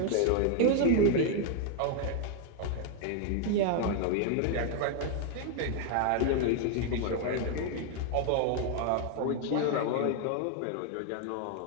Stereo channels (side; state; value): both; different; correlation 0.00